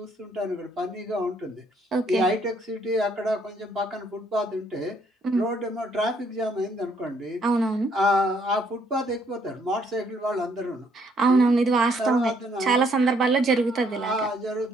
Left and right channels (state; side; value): normal; both; correlation 0.68